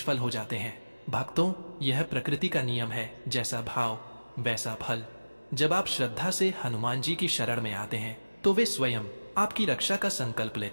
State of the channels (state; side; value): inverted; both; correlation -1.00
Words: हो जाते हैं। भक्तों, यह प्रकृति का नियम है, जैसा भाव वैसा फल। जब आप श्रद्धा से हनुमान जी की शरण में आते हैं तो वे स्वयं आपकी रक्षा का संकल्प